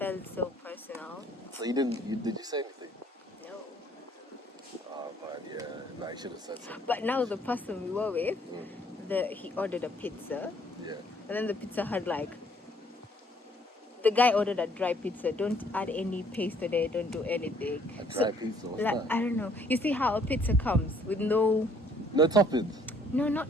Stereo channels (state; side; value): normal; both; correlation 0.62